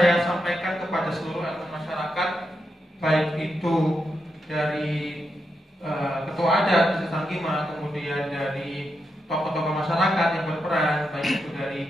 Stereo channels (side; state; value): both; normal; correlation 0.85